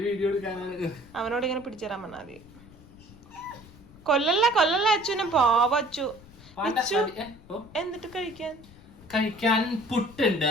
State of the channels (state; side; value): noise; left; rumble, 22 dB below the sound